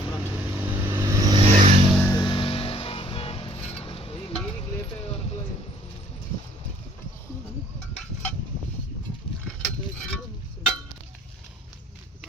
మీనికి లేపే వరకు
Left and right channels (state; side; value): normal; both; correlation 0.58